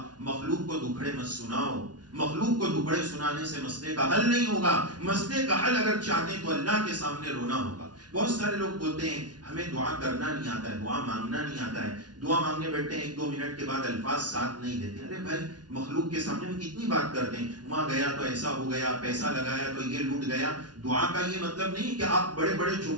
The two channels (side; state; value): left; late; 0.69 ms